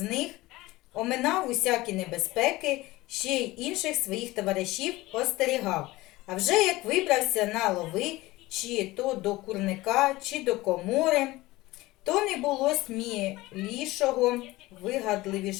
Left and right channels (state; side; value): quieter; right; 19.3 dB